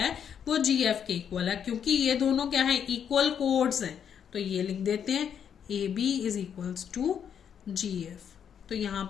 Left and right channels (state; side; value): quieter; right; 8.2 dB